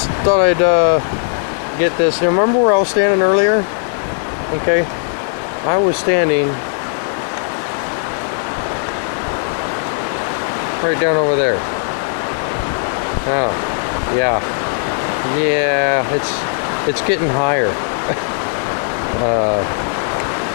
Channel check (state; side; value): silent; right; 57 dB below the other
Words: thought I'd get this. Now, remember where I was standing earlier? Okay, I was standing right down over there. Oh, yeah, it's getting higher.